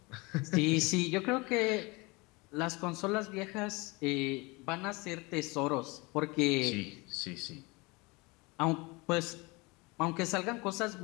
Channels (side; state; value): right; quieter; 25.8 dB